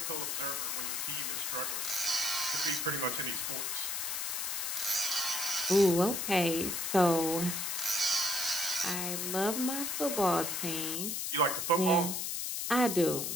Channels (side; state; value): left; noise; hiss, 2 dB below the sound